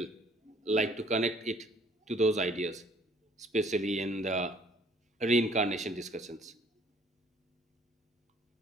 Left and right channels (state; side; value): normal; both; correlation 0.59